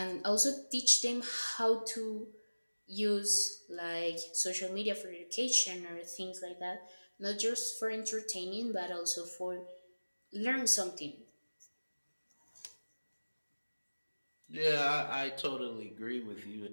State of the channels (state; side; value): inverted; both; correlation -1.00